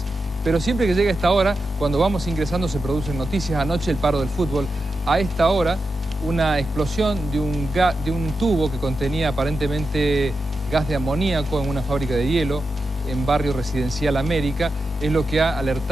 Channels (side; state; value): both; normal; correlation 0.89